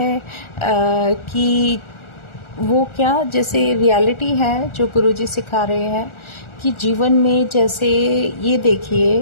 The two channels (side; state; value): right; late; 1.4 ms